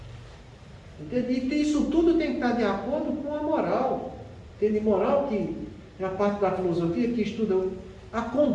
Entende? E isso tudo tem que estar de acordo com a moral. Entende? Moral que é a parte da filosofia que estuda a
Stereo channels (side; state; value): both; identical; correlation 1.00